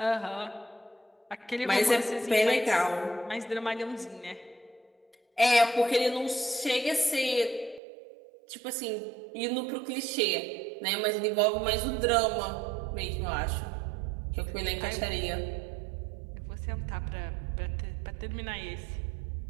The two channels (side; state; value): left; drops out; at 7.8 s